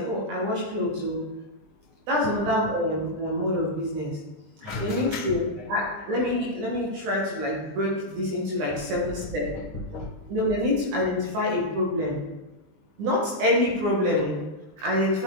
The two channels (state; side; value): late; left; 20 ms